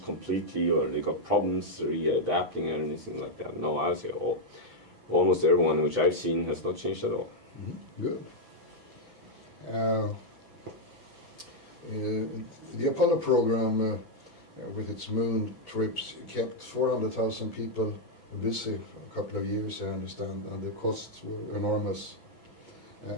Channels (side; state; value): left; late; 6.0 ms